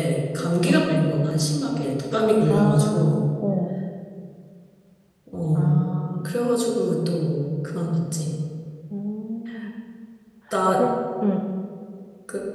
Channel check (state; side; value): identical; both; correlation 1.00